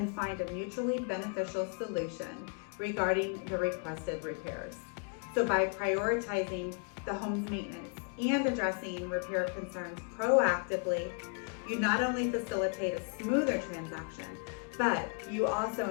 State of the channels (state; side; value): quieter; right; 36.3 dB